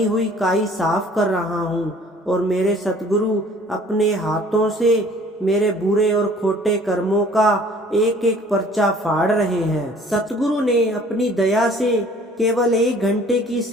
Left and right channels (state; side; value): normal; both; correlation 0.53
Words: हुई काई साफ कर रहा हूँ और मेरे सतगुरु अपने हाथों से मेरे बुरे और खोटे कर्मों का एक एक पर्चा फाड़ रहे हैं। सतगुरु ने अपनी दया से केवल 1 घंटे की